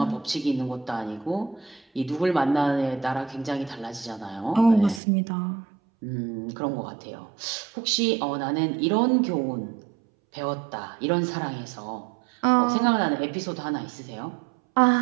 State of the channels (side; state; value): left; drops out; at 5.0 s